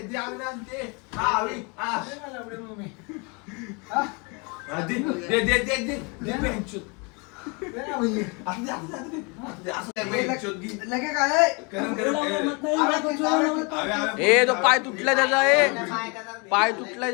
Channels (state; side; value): quieter; right; 31.5 dB